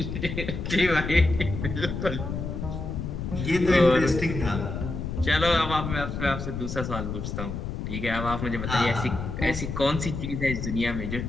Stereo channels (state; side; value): noise; left; rumble, 5 dB below the sound